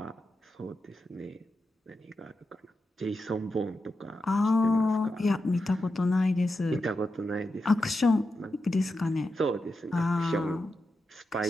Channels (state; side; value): normal; both; correlation 0.88